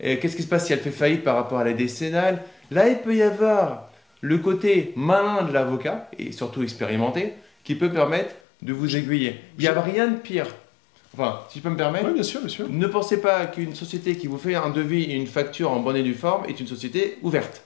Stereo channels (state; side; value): drops out; right; at 8.4 s